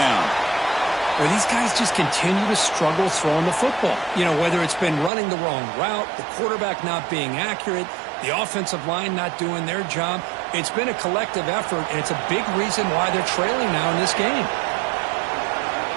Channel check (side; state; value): left; drops out; at 5.1 s